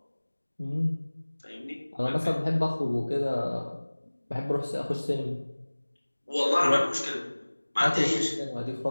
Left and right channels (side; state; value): both; inverted; correlation -1.00